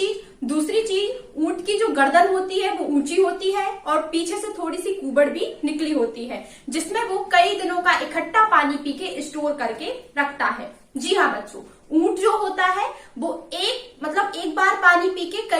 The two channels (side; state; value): both; identical; correlation 1.00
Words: दूसरी चीज, ऊंट की जो गर्दन होती है वो ऊंची होती है और पीछे से थोड़ी सी कुबड़ भी निकली होती है, जिसमें वो कई दिनों का इकट्ठा पानी पी के स्टोर करके रखता है। जी हाँ बच्चों, ऊंट जो होता है वो एक बार पानी पी के